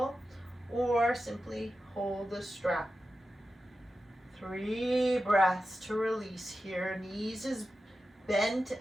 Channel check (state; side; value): normal; both; correlation 0.92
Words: or simply hold the strap. 3 breaths to release here. Knees as bent